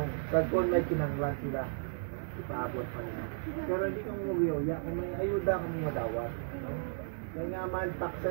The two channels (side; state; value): left; silent; digital silence